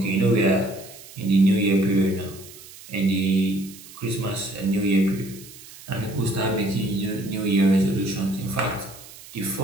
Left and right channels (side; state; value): right; noise; hiss, 18 dB below the sound